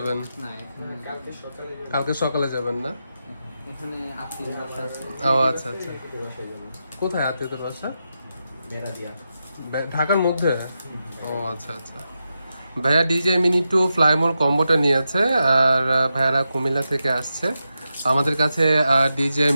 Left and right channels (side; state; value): both; inverted; correlation -0.88